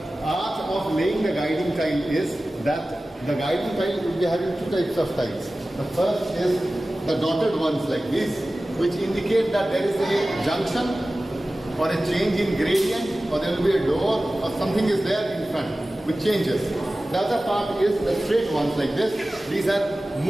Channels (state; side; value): normal; both; correlation 0.96